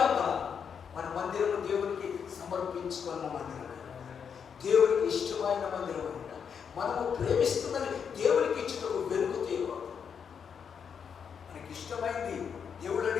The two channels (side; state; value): right; quieter; 7.0 dB